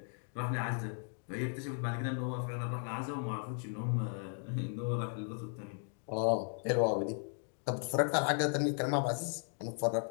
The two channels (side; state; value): right; silent; 54 dB below the other